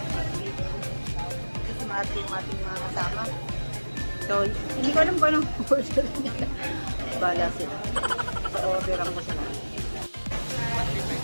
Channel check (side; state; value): both; inverted; correlation -1.00